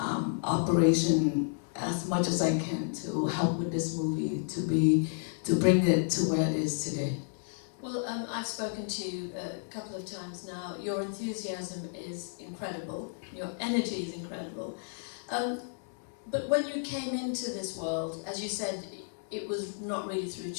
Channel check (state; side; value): silent; right; digital silence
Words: operation as much as I can to help with this movie to bring it to where it is today. Well, I've spoken to you a couple of times now. Your enthusiasm is incredible. Your energy is incredible. But when you came into this world, as you said, it was not really through